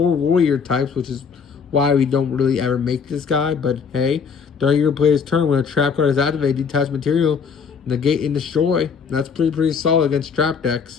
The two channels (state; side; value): quieter; right; 6.2 dB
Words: warrior types, which is why we don't really ever make this guy. But hey, during your player's turn, when a trap card is activated, detach material, negate and destroy. That's pretty solid against trap